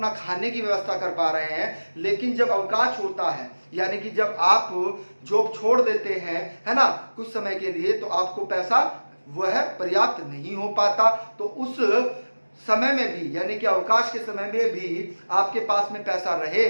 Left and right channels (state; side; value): inverted; both; correlation -1.00